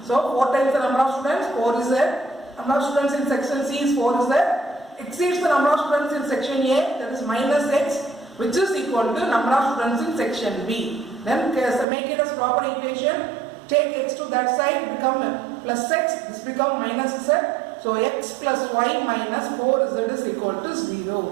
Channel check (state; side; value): drops out; left; at 11.9 s